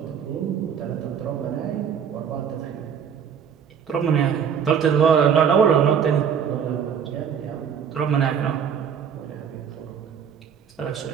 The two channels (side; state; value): left; quieter; 7.7 dB